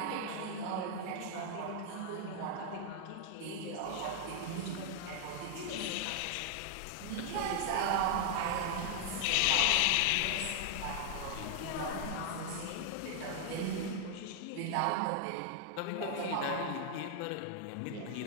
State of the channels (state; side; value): different; both; correlation 0.00